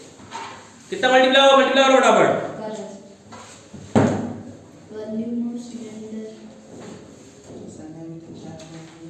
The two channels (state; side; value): identical; both; correlation 1.00